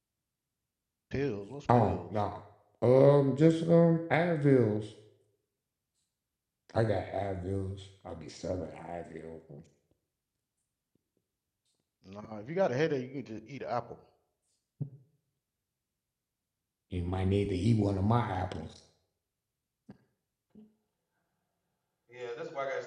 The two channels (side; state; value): both; identical; correlation 1.00